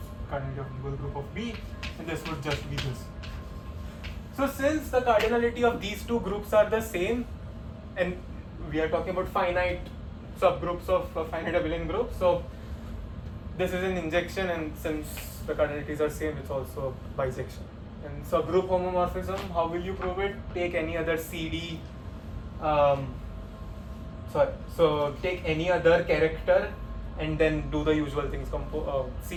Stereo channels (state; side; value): identical; both; correlation 1.00